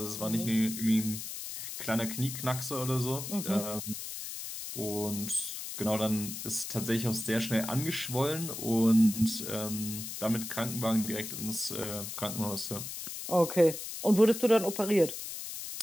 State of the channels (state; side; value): noise; left; hiss, 7 dB below the sound